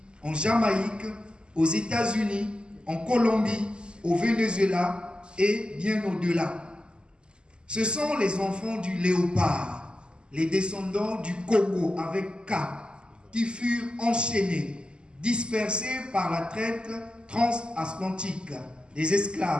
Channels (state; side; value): late; left; 0.049 ms